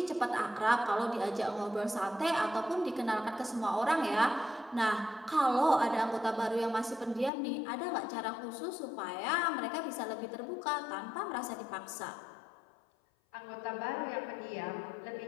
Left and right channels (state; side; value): drops out; right; at 7.3 s